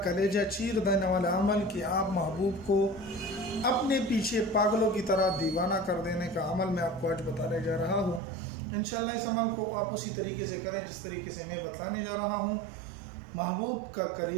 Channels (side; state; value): left; drops out; at 8.2 s